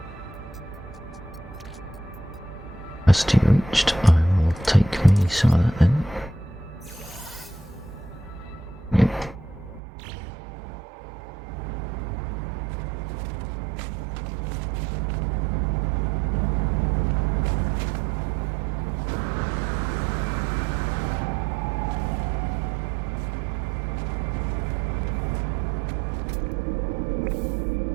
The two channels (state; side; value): drops out; left; at 9.8 s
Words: Capacity reached. I will take me some of that then. Yep.